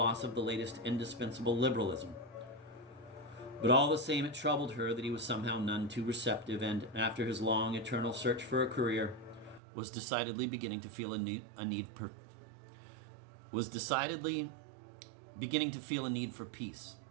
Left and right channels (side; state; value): left; drops out; at 9.6 s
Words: of the latest indispensable liberalism. But all the same, it troubled her that he was somehow none too receptive, and after his long, eternal search for a career, was decidedly beginning to feel a need for peace.